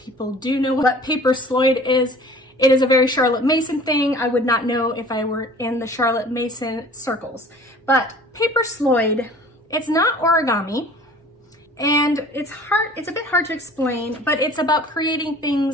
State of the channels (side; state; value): both; normal; correlation 0.47